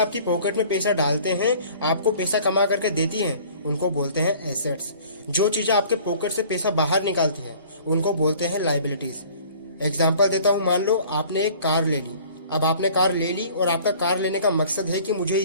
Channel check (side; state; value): both; inverted; correlation -0.50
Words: पॉकेट में पैसा डालते हैं, आपको पैसा कमा करके देती हैं, उनको बोलते हैं एसेट्स। जो चीजें आपके पॉकेट से पैसा बाहर निकालती हैं, उनको बोलते हैं लायबिलिटीज। एग्जाम्पल देता हूँ, मान लो आपने एक कार ले ली। अब आपने कार ले ली और आपका कार लेने का मकसद है कि मुझे